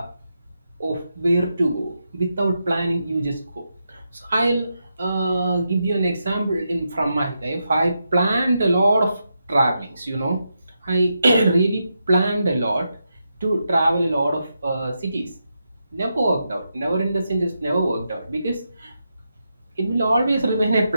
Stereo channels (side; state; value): both; inverted; correlation -0.85